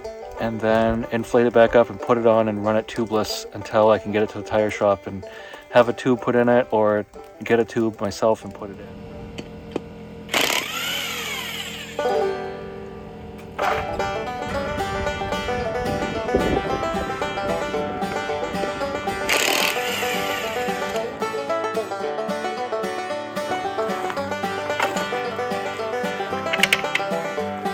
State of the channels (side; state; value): both; identical; correlation 1.00